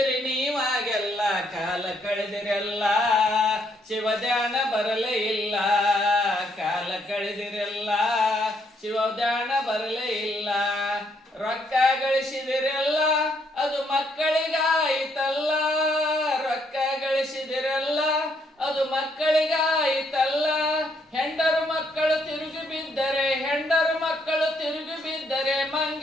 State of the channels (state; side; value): normal; both; correlation 0.72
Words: ನೀವಾಗೆಲ್ಲ ಕಾಲ ಕಳೆದಿರಲ್ಲ ಶಿವಧ್ಯಾನ ಬರಲೇ ಇಲ್ಲ ಕಾಲ ಕಳೆದಿರಲ್ಲ ಶಿವಧ್ಯಾನ ಬರಲೇ ಇಲ್ಲ ರೊಕ್ಕ ಗಳಿಸಿದಿರಲ್ಲ ಅದು ಮಕ್ಕಳಿಗಾಯಿತಲ್ಲ ರೊಕ್ಕ ಗಳಿಸಿದಿರಲ್ಲ ಅದು ಮಕ್ಕಳಿಗಾಯಿತಲ್ಲ ಹೆಂಡರು ಮಕ್ಕಳು ತಿರುಗಿ ಬಿದ್ದರೆ ಹೆಂಡರು ಮಕ್ಕಳು ತಿರುಗಿ ಬಿದ್ದರೆ